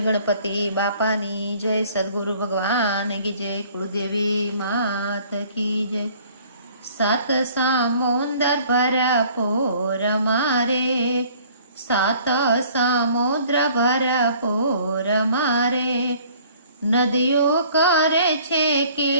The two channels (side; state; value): both; inverted; correlation -0.55